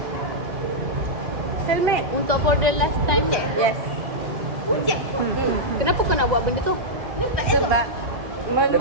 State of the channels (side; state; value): left; late; 1.9 ms